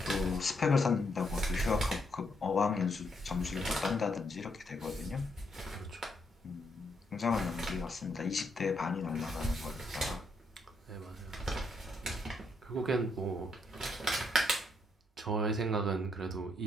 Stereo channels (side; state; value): both; normal; correlation 0.76